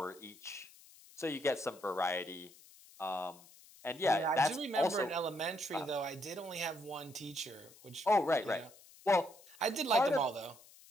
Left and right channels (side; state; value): left; noise; hiss, 23 dB below the sound